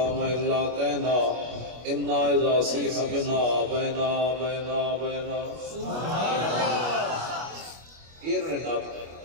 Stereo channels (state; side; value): late; left; 25 ms